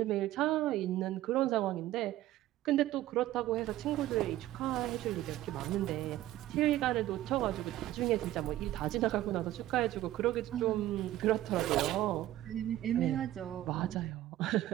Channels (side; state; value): left; quieter; 14.5 dB